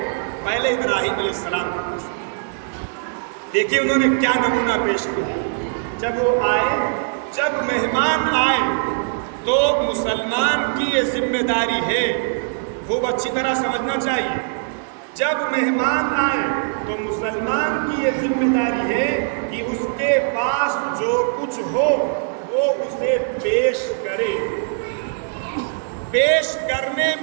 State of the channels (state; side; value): silent; left; digital silence